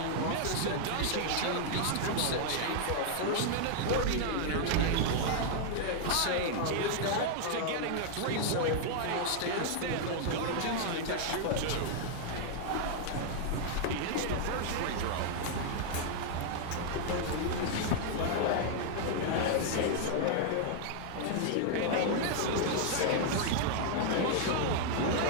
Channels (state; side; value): different; both; correlation 0.00